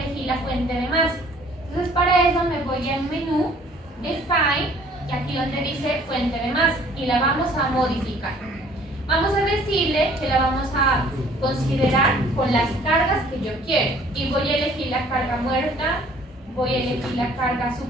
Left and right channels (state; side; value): normal; both; correlation 0.56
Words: la fuente de masa. Entonces para eso me voy al menú de File y aquí donde dice fuente de masa y la vamos a modificar. Vamos a decirle que la vamos a considerar con las cargas que yo quiero y voy a elegir la carga muerta, voy a elegir la carga